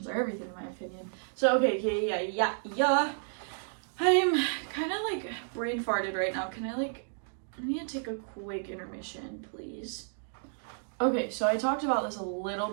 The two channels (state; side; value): silent; left; digital silence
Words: are everything, in my opinion. So, okay, yeah. I'm kind of like brain farted right now. I need to take a quick intermission, please. Okay, so I talked about this a